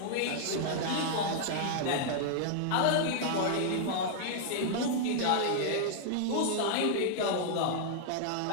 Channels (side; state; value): both; different; correlation -0.01